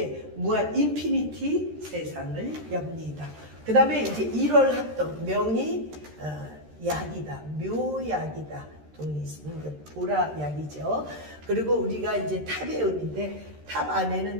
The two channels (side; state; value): left; late; 13 ms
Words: 무한 인피니티 세상을 엽니다. 그 다음에 이제 1월 합덕, 명이 약이다, 묘약이다. 보라약이죠. 그리고 우리가 이제 탑의 의미인데, 탑